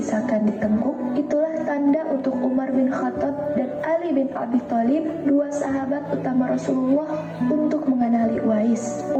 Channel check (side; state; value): both; identical; correlation 1.00